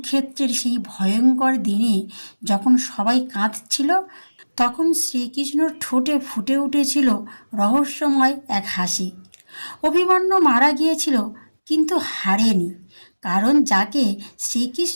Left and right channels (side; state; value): both; inverted; correlation -1.00